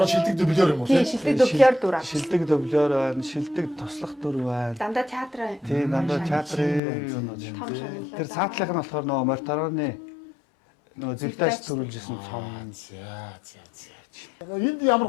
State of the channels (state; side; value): drops out; right; at 6.8 s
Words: шилдэг дублер юм уу? Тийм, шилдэг дублер дүр аа. Шилдэг дублер байна, шилдэг туслах дүр байна. Дандаа театр. Тийм, дандаа театрын юмнууд. Тэр цаатлах нь болохоор нөгөө Мортороны нөгөө зэгтайч төрүүлжсэн цом. За. Энд